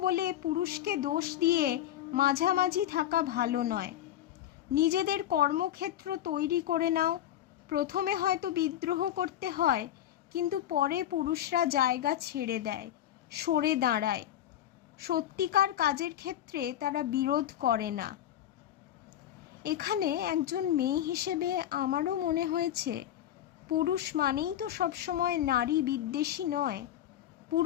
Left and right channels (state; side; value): quieter; right; 11.7 dB